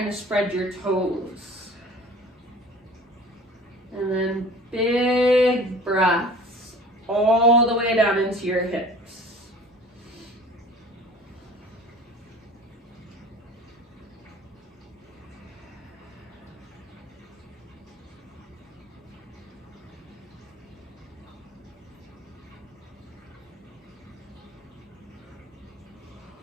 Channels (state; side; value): normal; both; correlation 0.44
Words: to spread your toes. And then big breaths all the way down into your hips.